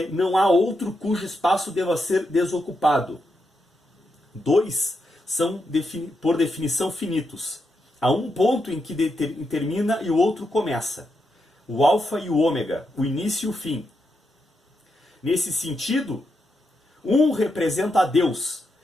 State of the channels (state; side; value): normal; both; correlation 0.84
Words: não há outro cujo espaço deva ser desocupado. 2 são, por definição, finitos. Há um ponto em que termina e o outro começa. O alfa e o ômega, o início e o fim. Nesse sentido, 1 representa a Deus